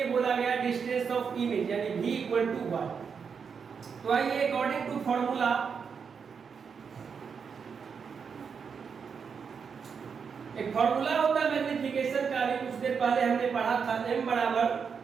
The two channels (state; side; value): quieter; left; 6.2 dB